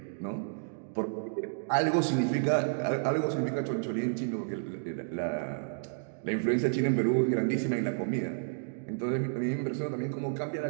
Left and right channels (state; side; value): silent; left; digital silence